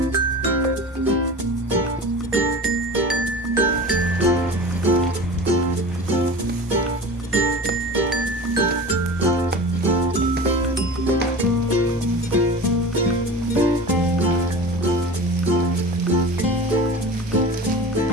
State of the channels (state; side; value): normal; both; correlation 0.34